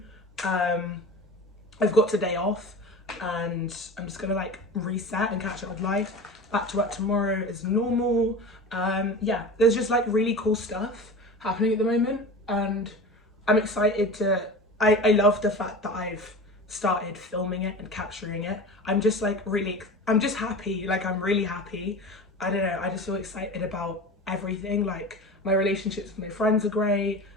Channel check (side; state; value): both; normal; correlation 0.32